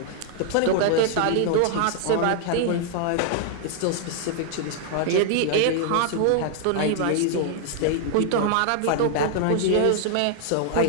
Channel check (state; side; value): different; both; correlation 0.00